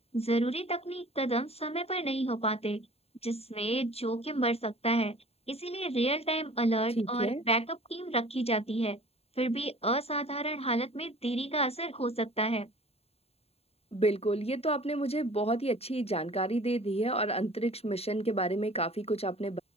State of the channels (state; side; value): late; right; 0.29 ms